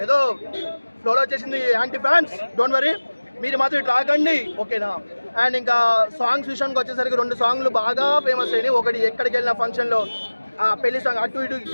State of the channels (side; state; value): both; inverted; correlation -1.00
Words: ఏదో ఫ్లోలో వచ్చేసింది యాంటీ ఫ్యాన్స్, డోంట్ వరీ, మీరు మాత్రం ఇట్లా రాకండి, ఓకేనా? అండ్ ఇంకా సాంగ్స్ విషయానికి వచ్చేసరికి 2 సాంగ్లు బాగా ఫేమస్ అయినాయి. ఒకటి ఎక్కడికి వెళ్ళిన ఫంక్షన్లో పెళ్లి సాంగ్,